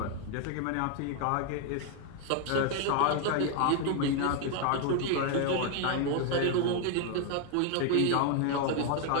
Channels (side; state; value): both; different; correlation 0.00